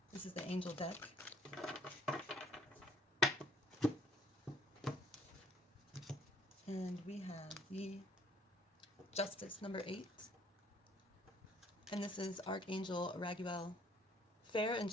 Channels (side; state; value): both; normal; correlation 0.61